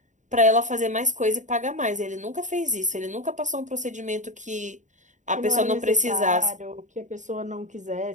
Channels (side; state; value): left; late; 0.36 ms